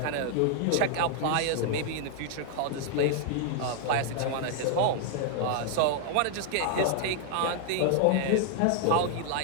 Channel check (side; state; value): both; different; correlation 0.00